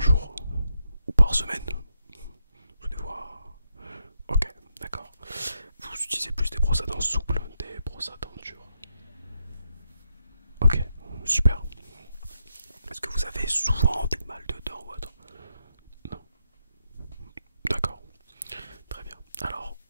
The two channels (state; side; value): inverted; both; correlation -0.82